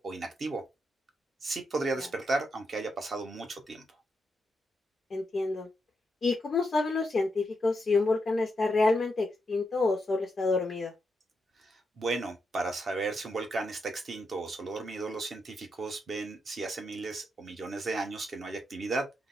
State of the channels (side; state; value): both; normal; correlation 0.83